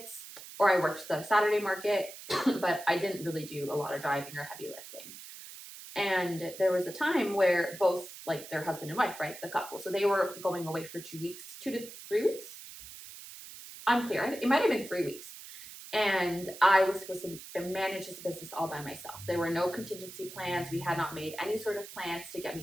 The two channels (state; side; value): noise; right; hiss, 14 dB below the sound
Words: or I worked the Saturday market, but I didn't really do a lot of driving or heavy lifting. And there was a time where both, like their husband and wife, right, the couple, so they were going away for 2 weeks, 2 to 3 weeks. Unclear. It might have been 3 weeks. And I was supposed to manage this business all by myself. There were no contingency plans. We had not made any sort of plans to get